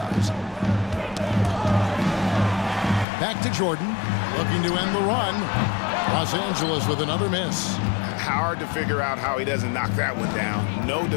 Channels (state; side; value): drops out; right; at 3.1 s